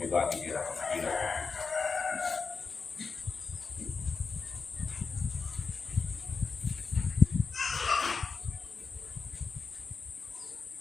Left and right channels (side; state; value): right; quieter; 4.9 dB